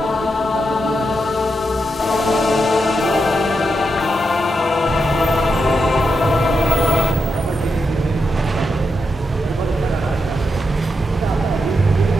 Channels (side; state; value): both; normal; correlation 0.85